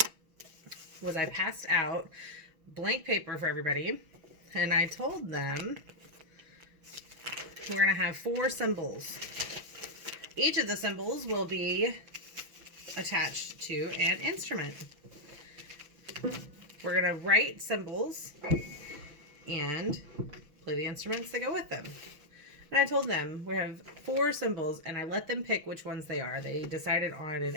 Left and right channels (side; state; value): left; late; 6.0 ms